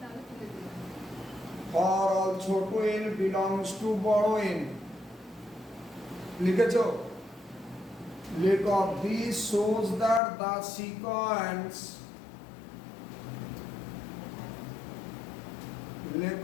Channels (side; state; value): right; drops out; at 10.2 s